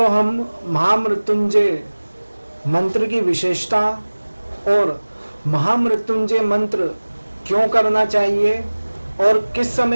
हम महामृत्युंजय मंत्र की विशेषता और महामृत्युंजय मंत्र क्यों करना चाहिए और किस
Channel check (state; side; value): inverted; both; correlation -1.00